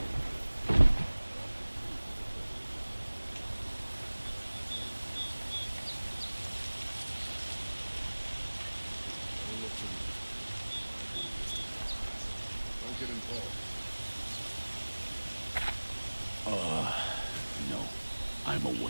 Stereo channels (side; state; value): both; inverted; correlation -1.00